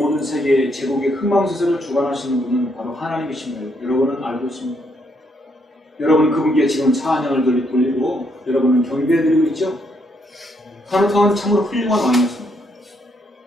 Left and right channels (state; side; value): normal; both; correlation 0.74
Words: 세계의 제국의 흥망성쇠를 주관하시는 분은 바로 하나님이십니다. 여러분은 알고 있습니다. 여러분은 그분께 지금 찬양을 돌리고 여러분은 경배해드리고 있죠? 카누트 왕은 참으로 훌륭한 왕이었습니다.